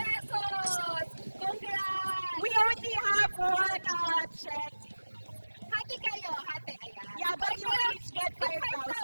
Congrats! We only have one check. Hati kayo, hati. Ayan. Yeah, but Ay, you pero each get tig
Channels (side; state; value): both; inverted; correlation -1.00